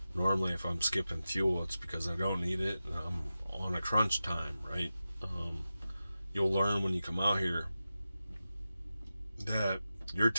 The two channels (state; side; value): inverted; both; correlation -0.93